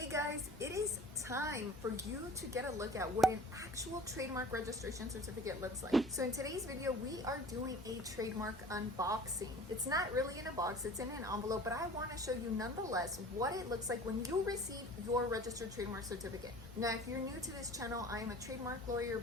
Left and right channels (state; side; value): normal; both; correlation 0.44